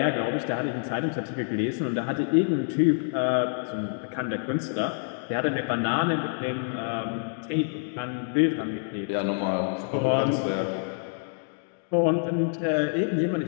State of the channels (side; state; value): right; silent; digital silence